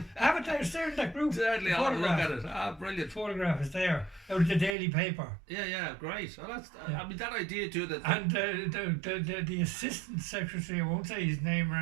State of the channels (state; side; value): drops out; left; at 4.8 s